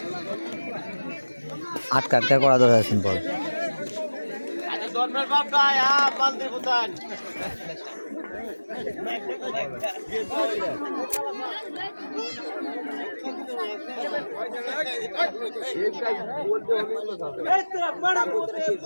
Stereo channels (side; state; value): both; inverted; correlation -1.00